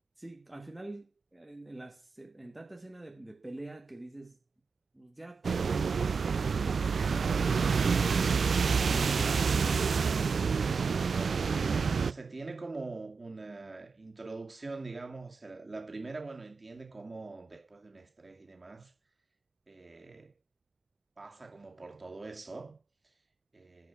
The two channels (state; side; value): quieter; left; 5.1 dB